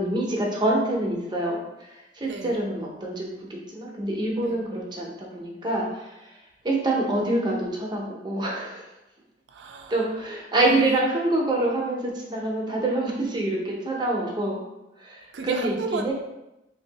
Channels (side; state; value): both; normal; correlation 0.43